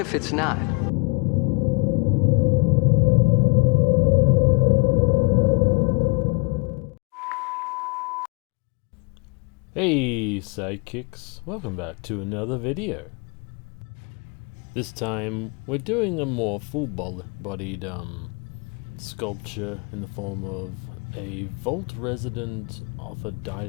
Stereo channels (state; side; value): quieter; right; 31.0 dB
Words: it's not? Hey sidekicks, welcome back to another video. This time we're doing a more full-bodied sculpture in the form of a vault resident off a